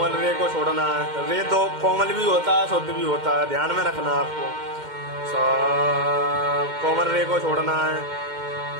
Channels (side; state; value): left; late; 2.1 ms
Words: रे को छोड़ना है, रे तो कोमल भी होता है शुद्ध भी होता है, ध्यान में रखना आपको। सा कोमल रे को छोड़ना है